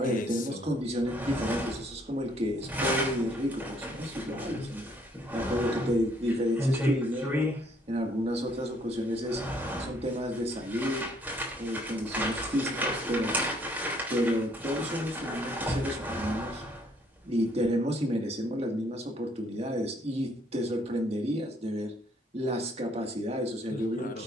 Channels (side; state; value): both; normal; correlation 0.65